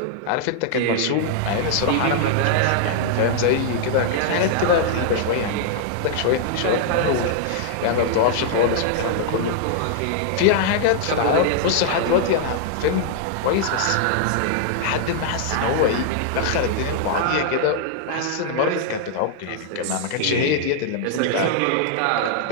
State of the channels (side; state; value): both; different; correlation -0.01